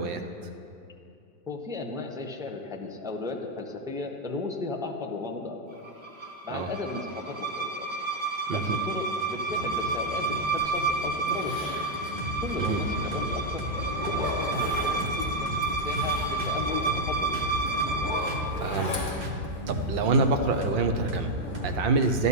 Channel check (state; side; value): late; left; 2.4 ms